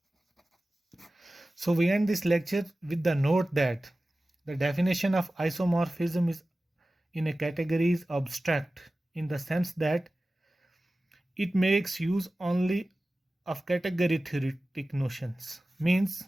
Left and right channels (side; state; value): both; normal; correlation 0.96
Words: So we end this lecture with the note that the definition of isomorphism is in a category is abstract in the sense that it makes use only of category theoretic notions, means